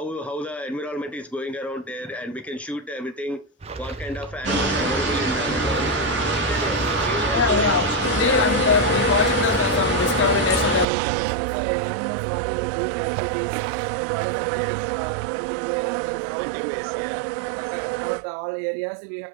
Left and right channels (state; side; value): drops out; left; at 10.9 s